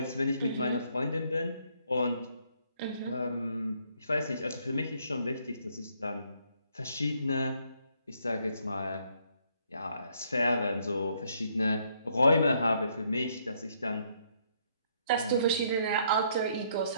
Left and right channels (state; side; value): inverted; both; correlation -0.69